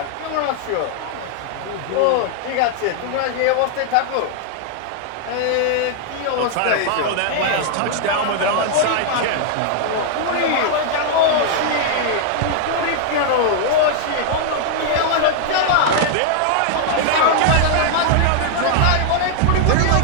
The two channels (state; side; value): different; both; correlation -0.01